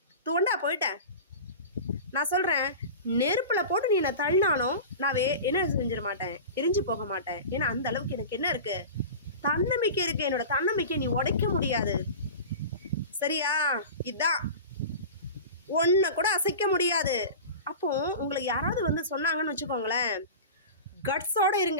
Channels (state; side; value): inverted; both; correlation -0.32